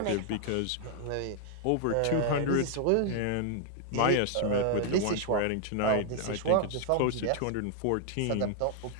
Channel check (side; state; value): both; different; correlation 0.00